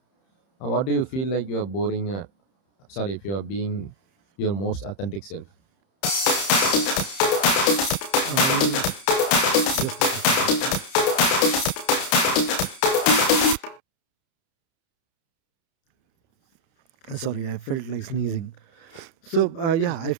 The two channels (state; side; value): late; right; 30 ms